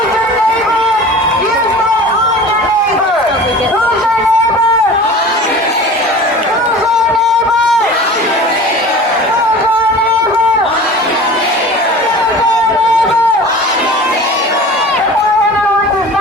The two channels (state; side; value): normal; both; correlation 0.39